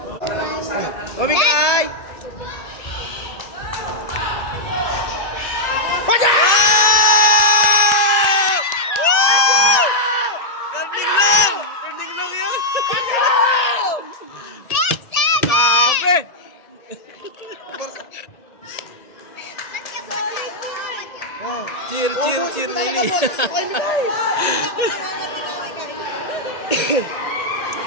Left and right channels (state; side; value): late; right; 1.9 ms